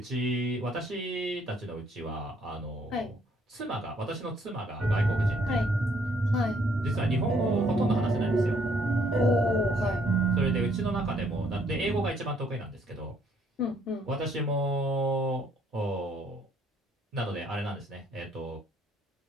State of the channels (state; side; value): normal; both; correlation 0.66